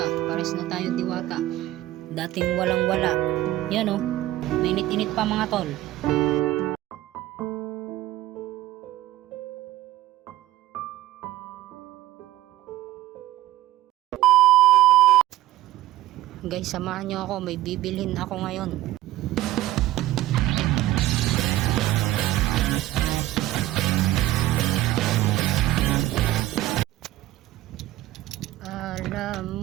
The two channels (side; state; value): left; quieter; 15.5 dB